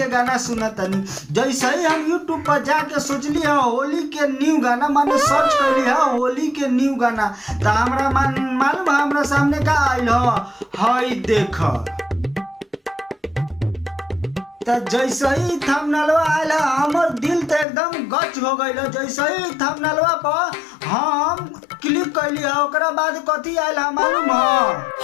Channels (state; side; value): drops out; right; at 17.7 s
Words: गाना सुन तनी। जैसे ही हम यूट्यूब पर जाके सोचली है होली के न्यू गाना माने सर्च कर है होली के न्यू गाना। तो हमरा मालूम हमरा सामने का आइल हई देख। तो जैसे ही थंबनेलवा आइल हमर दिल तो एकदम गच हो गइल। जैसे ही थंबनेलवा पर हम क्लिक कैली ओकरा बाद कथी आइल मालूम है